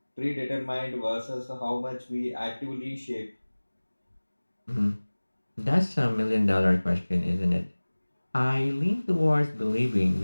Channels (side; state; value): both; inverted; correlation -1.00